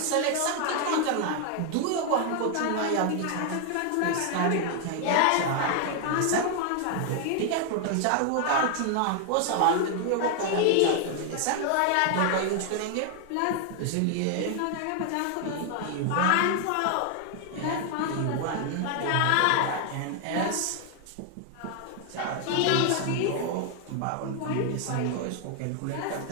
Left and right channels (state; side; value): different; both; correlation 0.00